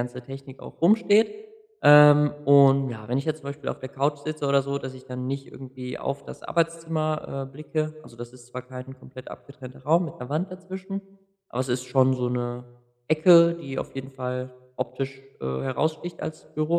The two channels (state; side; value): identical; both; correlation 1.00